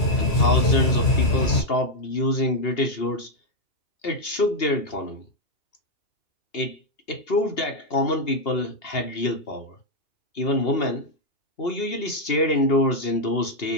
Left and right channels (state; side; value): late; right; 2.8 ms